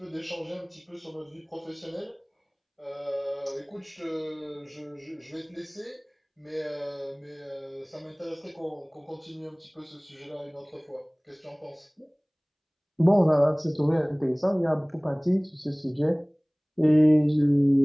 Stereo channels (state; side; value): identical; both; correlation 1.00